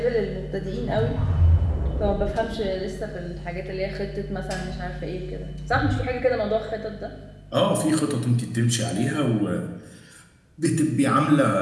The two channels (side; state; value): both; identical; correlation 1.00